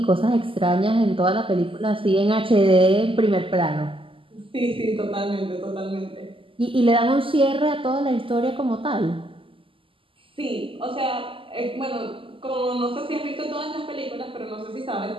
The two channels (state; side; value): late; left; 0.25 ms